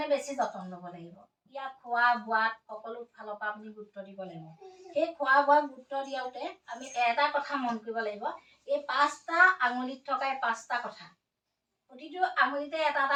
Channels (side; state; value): both; identical; correlation 1.00